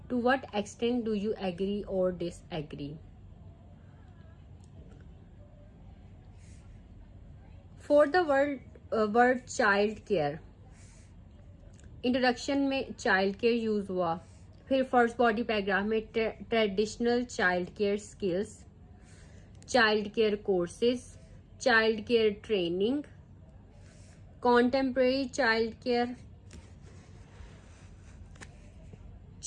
To what extent do you agree or disagree? For the word child care, introduction में child care use हुआ, फिर first body paragraph में traditional child care skills, child care courses, child care training, contemporary child care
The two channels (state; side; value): identical; both; correlation 1.00